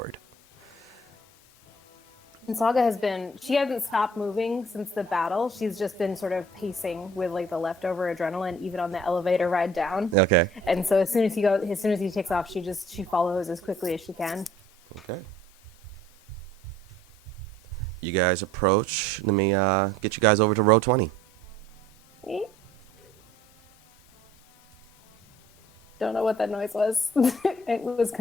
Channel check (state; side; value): normal; both; correlation 0.55